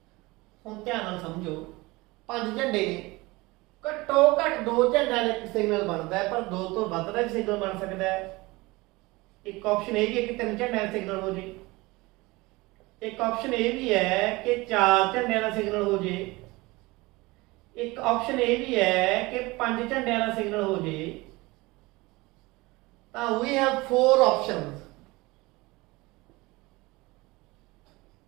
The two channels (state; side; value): quieter; left; 22.3 dB